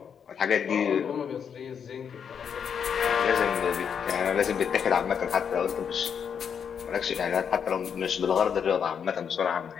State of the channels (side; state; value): right; quieter; 7.3 dB